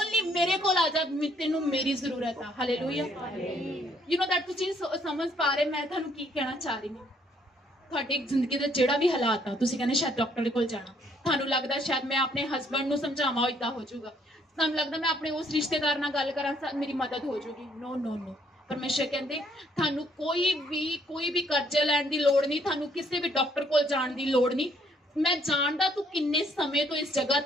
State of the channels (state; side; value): normal; both; correlation 0.67